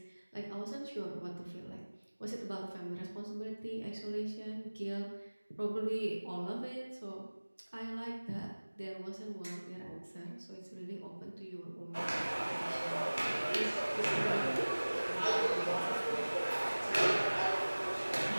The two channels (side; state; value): both; inverted; correlation -1.00